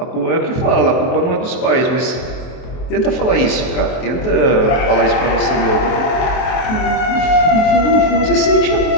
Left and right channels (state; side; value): late; right; 23 ms